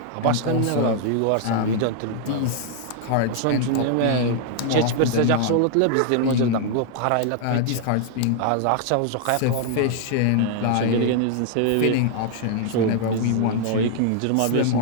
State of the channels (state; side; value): different; both; correlation 0.00